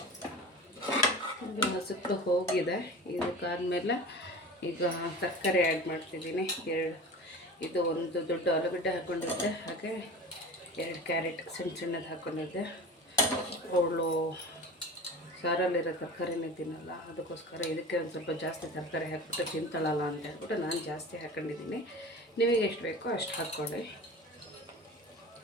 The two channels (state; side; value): normal; both; correlation 0.35